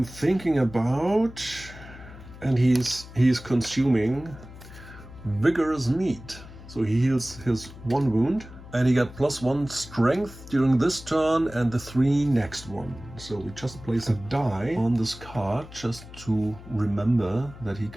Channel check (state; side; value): noise; left; hum, 17 dB below the sound